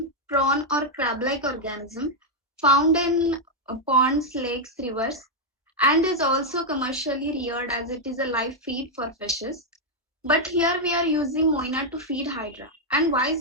prawn or crab-like organism found in ponds, lakes, rivers, and is also commercially reared as it is a live feed for fishes. But here we are using moina to feed hydra. And why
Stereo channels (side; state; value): both; normal; correlation -0.01